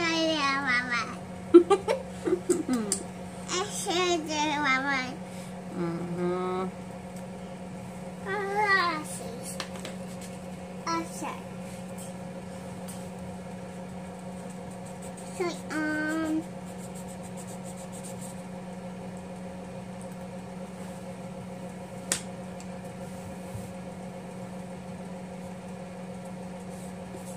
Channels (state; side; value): identical; both; correlation 1.00